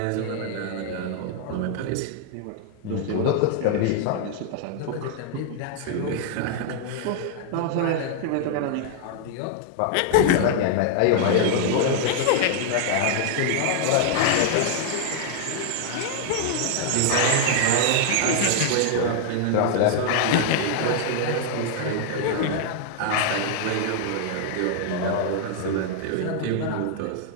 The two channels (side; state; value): both; different; correlation 0.00